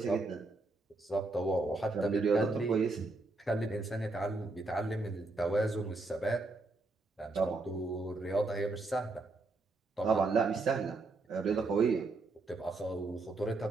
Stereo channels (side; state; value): left; quieter; 3.3 dB